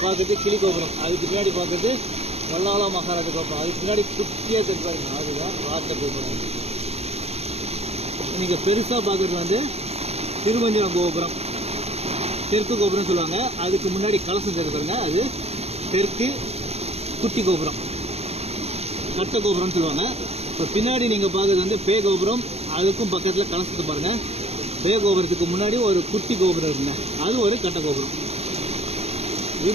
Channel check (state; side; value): late; left; 0.30 ms